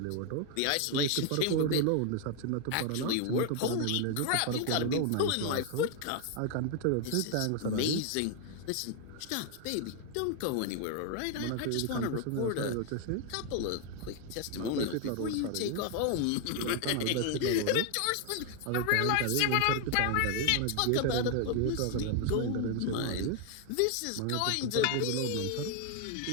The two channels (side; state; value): both; different; correlation 0.00